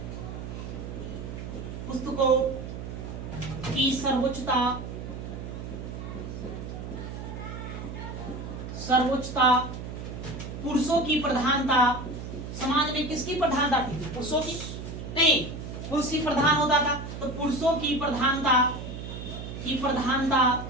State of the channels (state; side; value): noise; right; hum, 8 dB below the sound